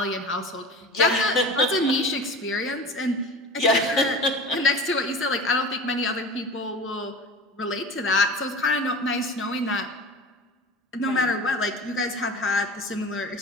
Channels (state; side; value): normal; both; correlation 0.34